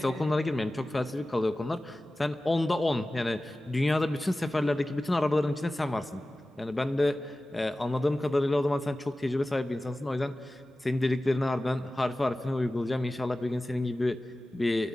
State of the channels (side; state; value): both; normal; correlation 0.96